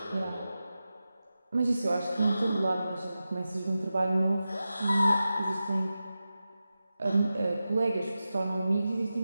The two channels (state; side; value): inverted; both; correlation -0.93